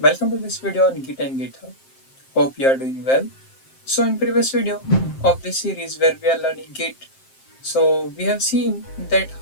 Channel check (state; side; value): late; right; 7.6 ms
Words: to this video on Git and GitHub. Hope you are doing well. So in previous video of this series where we are learning Git, so we have seen that